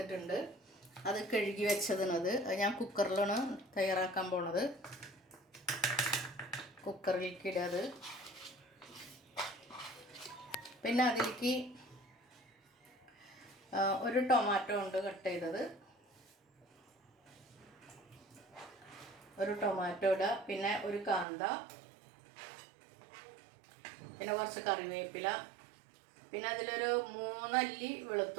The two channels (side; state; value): left; drops out; at 21.2 s